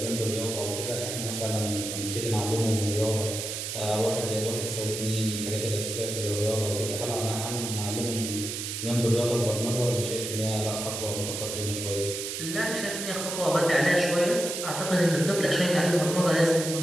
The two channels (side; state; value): right; noise; hiss, 5 dB below the sound